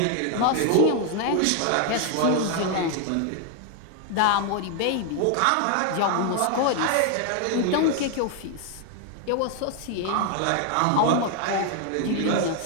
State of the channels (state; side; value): different; both; correlation 0.00